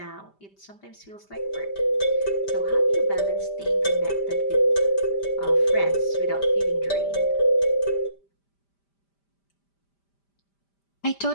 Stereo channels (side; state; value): right; late; 5.1 ms